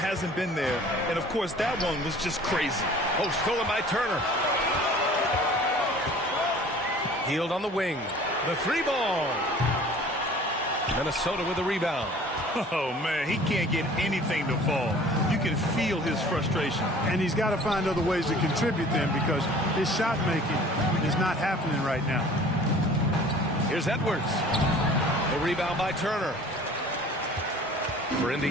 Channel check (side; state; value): both; normal; correlation 0.48